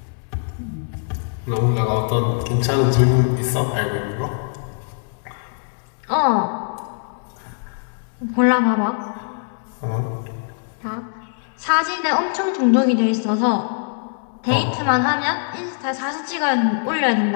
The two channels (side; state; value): right; silent; digital silence